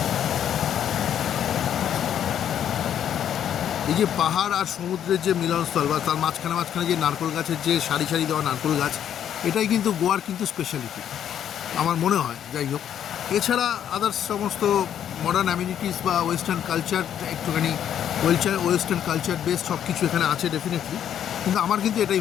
এই যে পাহাড় আর সমুদ্রের যে মিলনস্থল বা তার মাঝখানে মাঝখানে যে নারকেল গাছের যে সারি সারি দেওয়া নারকেল গাছ, এটাই কিন্তু গোয়ার কিন্তু স্পেশালিটি আমার মনে হয়। যাই হোক, এছাড়া আদার্স সমস্ত মডার্ন অ্যামিনিটিস বা ওয়েস্টার্ন কালচার একটুখানি ওয়েস্টার্ন কালচার বেস সব কিছু এখানে আছে ডেফিনেটলি, কিন্তু আমার কিন্তু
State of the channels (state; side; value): quieter; right; 9.7 dB